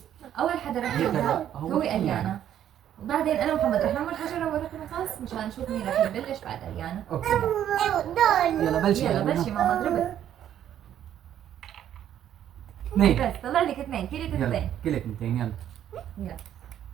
اول حدا رح يبدا هو اليانا، وبعدين انا ومحمد رح نعمل حجره ورقه مقص مشان نشوف مين رح يبلش بعد اليانا. اوكي دول يلا بلشي. يلا بلشي ماما اضربي. اثنين. بس طلع لك اثنين، كلك يلا اثنين. كلك 200. يلا يلا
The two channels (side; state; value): left; quieter; 10.6 dB